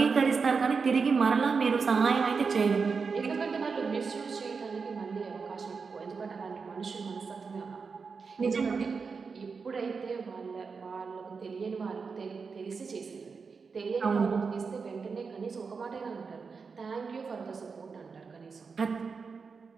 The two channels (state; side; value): quieter; left; 5.1 dB